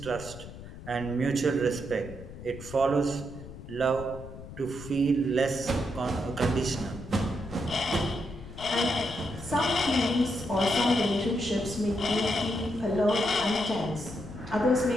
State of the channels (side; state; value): left; noise; rumble, 13 dB below the sound